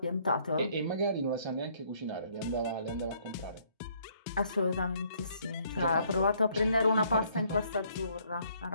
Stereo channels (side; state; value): both; inverted; correlation -0.65